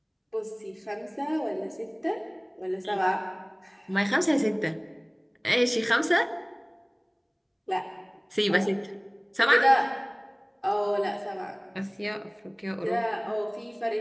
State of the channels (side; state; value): both; identical; correlation 1.00